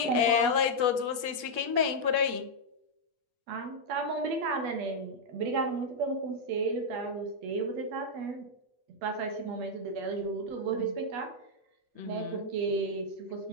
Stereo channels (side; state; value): left; late; 8.3 ms